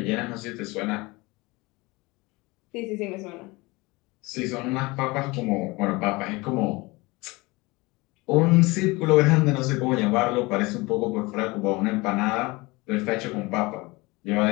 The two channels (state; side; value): quieter; right; 23.5 dB